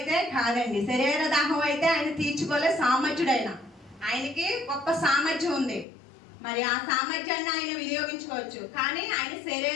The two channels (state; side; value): drops out; right; at 5.9 s